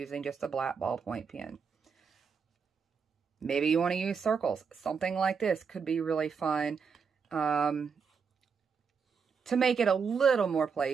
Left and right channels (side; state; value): left; quieter; 6.0 dB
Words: just a black ballpoint pen. Maybe you want to use circles. Something like this could be really fun to make it a little more